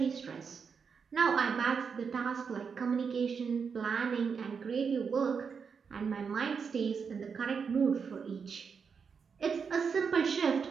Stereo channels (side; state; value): left; quieter; 6.0 dB